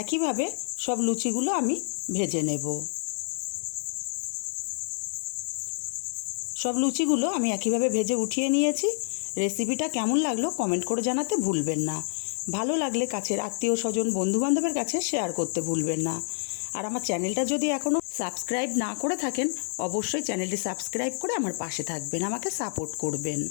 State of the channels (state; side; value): silent; right; digital silence